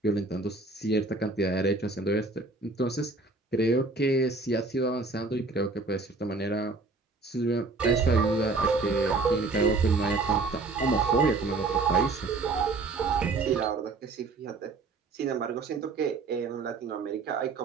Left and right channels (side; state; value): left; quieter; 3.7 dB